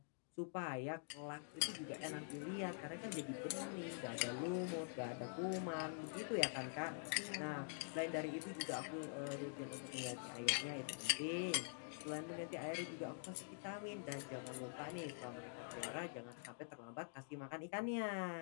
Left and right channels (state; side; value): silent; right; digital silence